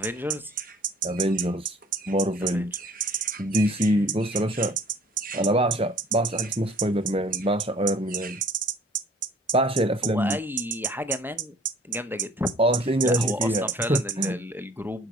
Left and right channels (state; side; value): normal; both; correlation 0.52